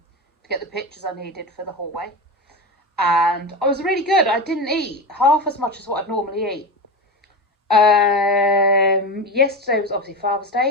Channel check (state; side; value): normal; both; correlation 0.21